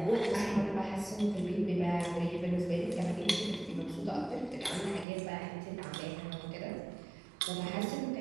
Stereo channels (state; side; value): drops out; left; at 5.1 s